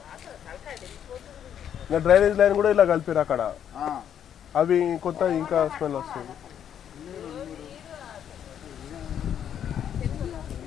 డ్రైనేజ్ లైన్ కూడా ఇలా కలిపారు అక్కడ. అవి కొత్త ఇంకా స్మెల్ వస్తుంది.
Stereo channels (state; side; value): quieter; right; 9.3 dB